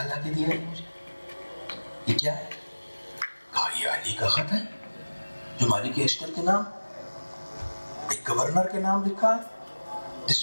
لا کے دیا ہے مجھے, یہ کیا ہے؟ کہا یہ علی کا خط ہے جو مالک اشتر کے نام ایک گورنر کے نام لکھا ہے,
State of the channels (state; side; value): inverted; both; correlation -1.00